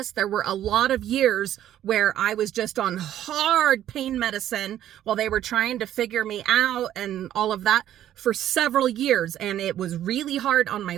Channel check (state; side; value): quieter; left; 11.8 dB